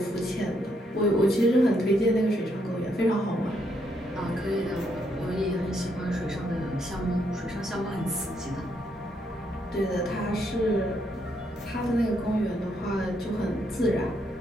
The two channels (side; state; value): both; normal; correlation 0.75